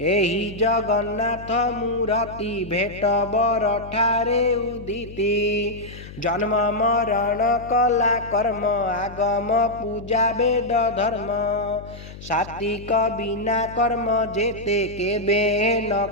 एही जगन्नाथ मूर्ति भेट बर ठारे उदिति जन्म मरण कला कर्म आगम पूजा वेद धर्म सात्विक बिना कर्म जेते केबे न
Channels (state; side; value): noise; left; hum, 15 dB below the sound